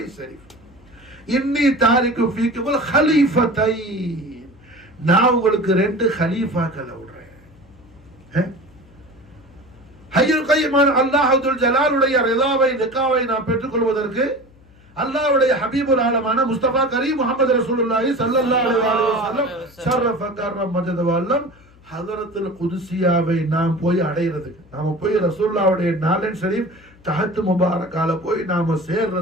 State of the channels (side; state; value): left; noise; hum, 27 dB below the sound